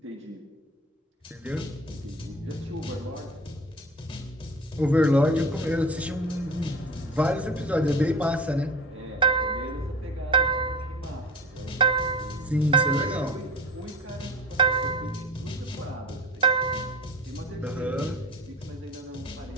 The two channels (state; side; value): normal; both; correlation 0.37